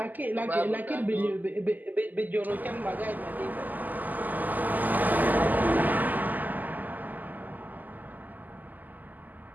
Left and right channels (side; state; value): left; late; 0.083 ms